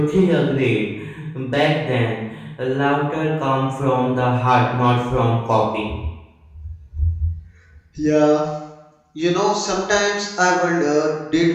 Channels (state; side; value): identical; both; correlation 1.00